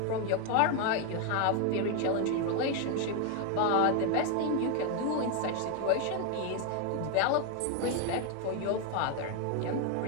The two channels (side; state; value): both; different; correlation 0.01